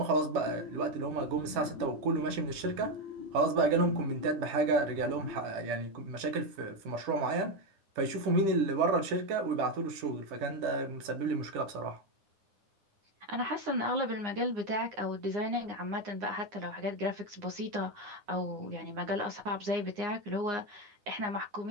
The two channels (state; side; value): late; left; 9.7 ms